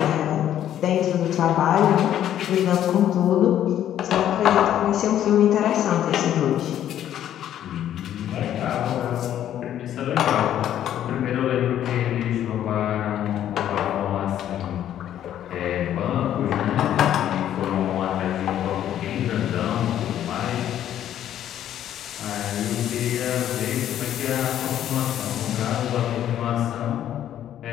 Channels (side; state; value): right; quieter; 11.1 dB